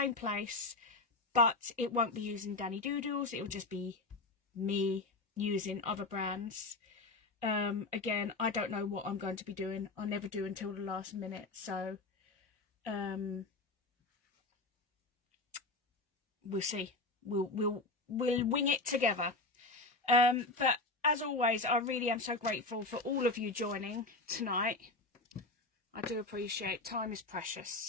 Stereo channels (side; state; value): right; quieter; 3.3 dB